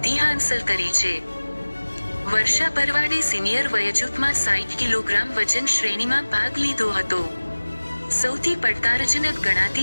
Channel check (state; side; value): inverted; both; correlation -1.00